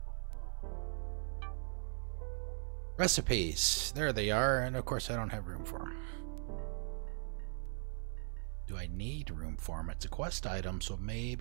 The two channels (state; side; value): silent; left; 52 dB below the other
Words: Recipes. There they are, and of course I don't have room for them. Do I need room for them? It's a quest item, so